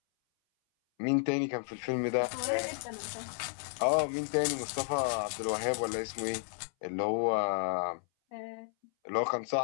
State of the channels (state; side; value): silent; right; 56 dB below the other